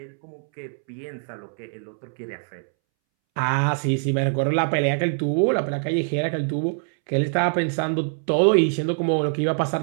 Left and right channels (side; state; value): left; silent; 63 dB below the other